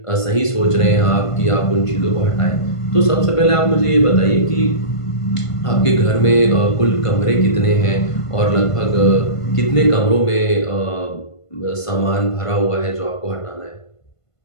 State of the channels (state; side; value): late; right; 1.5 ms